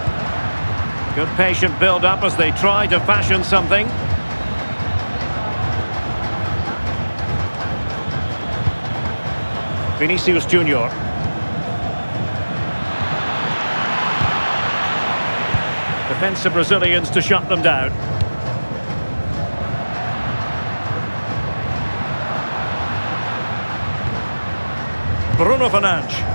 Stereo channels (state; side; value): inverted; both; correlation -1.00